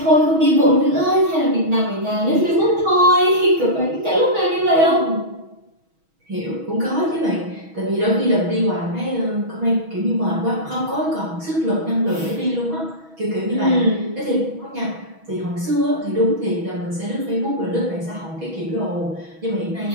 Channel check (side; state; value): left; late; 6.2 ms